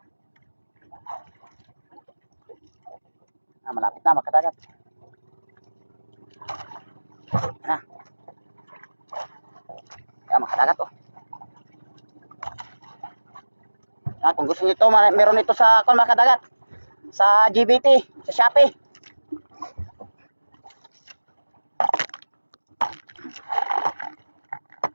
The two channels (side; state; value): both; inverted; correlation -1.00